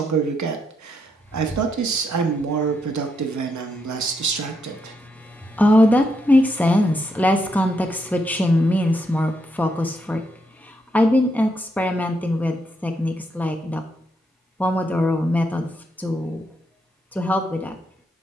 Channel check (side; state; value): both; normal; correlation 0.79